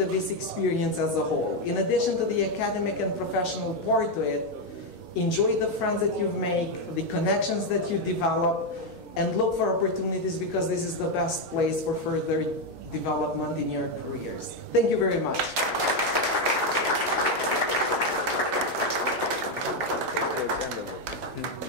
VIS experience as a whole. In addition to the academic and professional part to it, enjoy the friends that you make, the connections that you develop, and look for opportunities because this is the best place for further development in your careers. Thank you very much.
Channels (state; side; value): normal; both; correlation 0.05